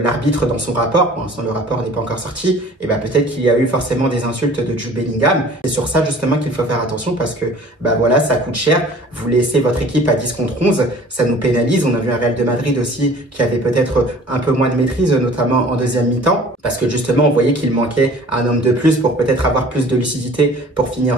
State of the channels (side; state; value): both; normal; correlation 0.48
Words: dans son rapport, pour l'instant le rapport n'est pas encore sorti, et ben peut-être qu'il y a eu forcément des insultes de Jude Bellingham. C'est sur ça justement qu'il faut faire attention parce que bah voilà, ça coûte cher. Vous laissez votre équipe à 10 contre 11, ça nous pénalise. On a vu un Real de Madrid aussi qui avait peut-être un peu moins de maîtrise, notamment en deuxième mi-temps, parce que justement on voyait qu'il manquait un homme de plus pour peut-être avoir plus de lucidité pour